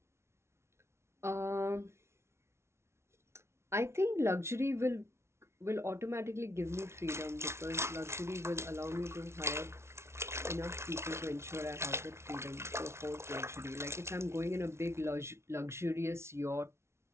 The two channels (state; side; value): late; left; 0.13 ms